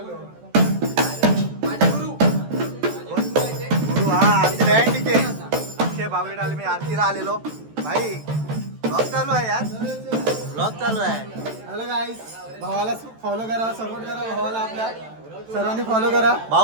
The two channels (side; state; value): left; late; 14 ms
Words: गुरु हा आमचे डॅन्डीचे अक्षय बागवेला आले. मी आरतीला आलेलो. भाई ब्लॉग चालू आहे यार. ब्लॉग चालू आहे. हॅलो गाईस, भावाला फॉलो करा, सपोर्ट करा भावाला. आपल्या सर्वांनी फॉलो करा.